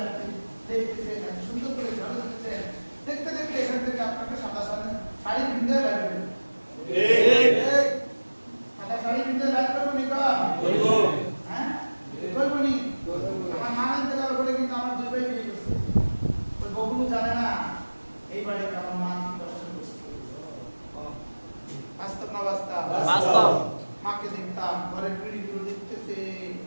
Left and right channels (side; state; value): both; inverted; correlation -1.00